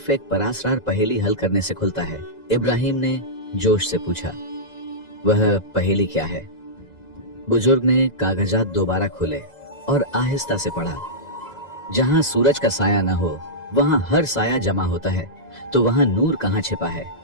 एक परासरार पहेली हल करने से खुलता है। इब्राहिम ने जोश से पूछा, वह पहेली क्या है? बुजुर्ग ने कागजात दोबारा खोले और आहिस्ता से पढ़ा। जहां सूरज का साया न हो वहां हर साया जमा होता है, तो वहां नूर कहां छिपा है?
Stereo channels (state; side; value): late; right; 2.0 ms